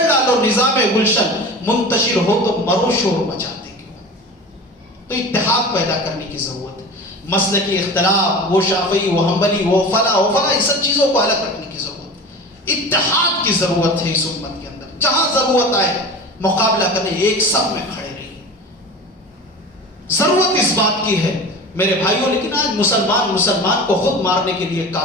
ڈالو نظام گلشن, منتشر ہو تو مرو شور مچاتے کیوں. تو اتحاد پیدا کرنے کی ضرورت ہے. مسلکی اختلاف, وہ شافعی, وہ حنبلی, وہ فلاں ان سب چیزوں کو الگ رکھنے کی ضرورت ہے. اتحاد کی ضرورت ہے اس امت کے اندر. جہاں ضرورت آئے مقابلہ کرنے, ایک سب میں کھڑے رہیے. ضرورت اس بات کی ہے میرے بھائیوں, لیکن آج مسلمان کو خود مارنے کے لیے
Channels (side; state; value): both; normal; correlation 0.33